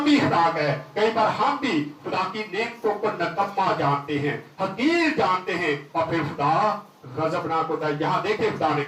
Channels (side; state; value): both; identical; correlation 1.00